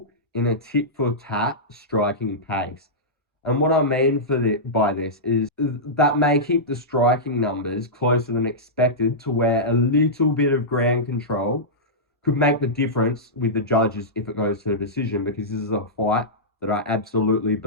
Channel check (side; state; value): both; normal; correlation -0.13